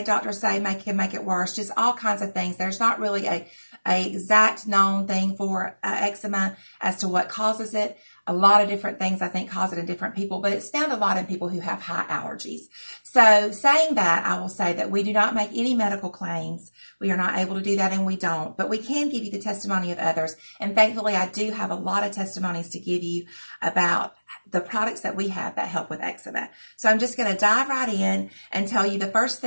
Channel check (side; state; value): both; inverted; correlation -1.00